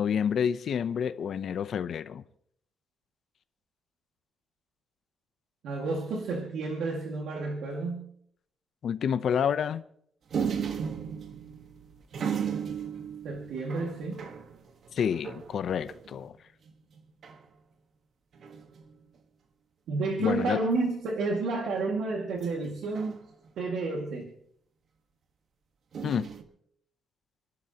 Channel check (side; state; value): both; normal; correlation 0.67